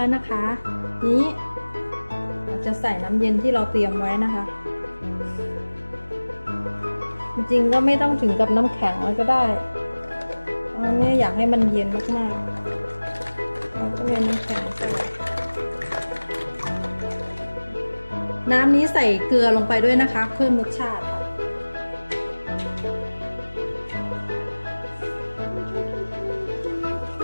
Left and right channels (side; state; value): both; inverted; correlation -1.00